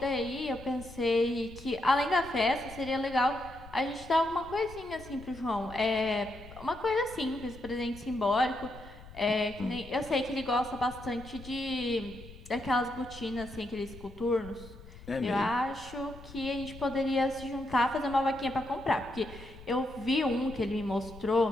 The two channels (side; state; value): left; noise; rumble, 17 dB below the sound